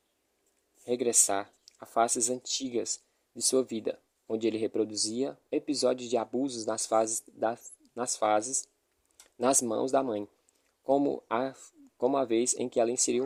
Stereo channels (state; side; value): identical; both; correlation 1.00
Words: a fases antigas de sua vida, onde ele reproduzia episódios de abusos nas mãos da mãe, como a vez em que ela inseriu